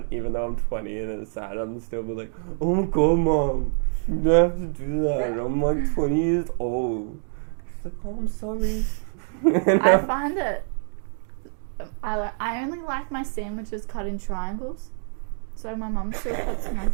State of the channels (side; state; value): left; silent; digital silence